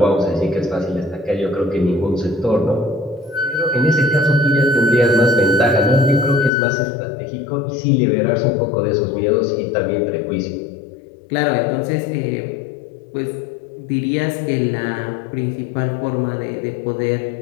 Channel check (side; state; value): right; drops out; at 6.5 s